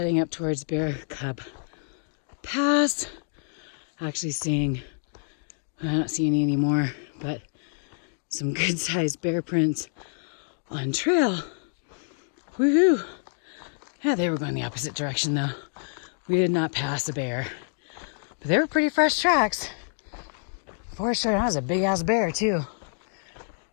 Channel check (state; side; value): silent; right; digital silence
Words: up towards Bear Cub Pass. Actually seeing, I don't see any anymore, but some good sized bear prints on trail. Woohoo! Yeah, they were going the opposite direction though. We did not pass a bear, but they were pretty fresh tracks. For sure, that was a big ass bear too.